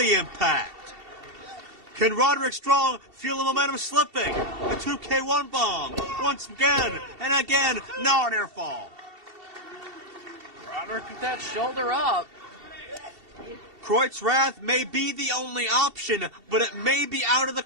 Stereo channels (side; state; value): left; late; 2.7 ms